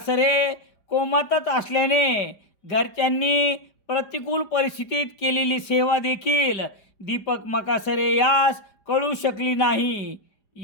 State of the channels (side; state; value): right; late; 4.9 ms